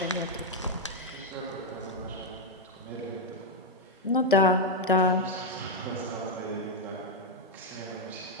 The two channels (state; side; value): normal; both; correlation 0.01